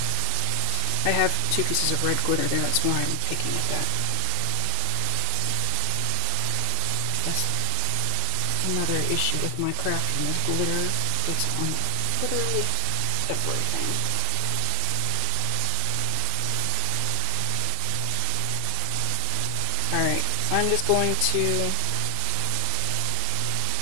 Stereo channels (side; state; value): both; different; correlation 0.00